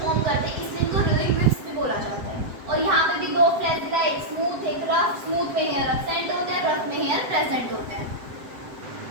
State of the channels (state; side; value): late; left; 7.7 ms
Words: करते हैं, इसलिए इनको रीलिंग विप्स भी बोला जाता है। और यहाँ पे भी दो फ्लैजिला, एक स्मूथ एक रफ, स्मूथ में हेयर एब्सेंट होते हैं, रफ में हेयर प्रेजेंट होते हैं।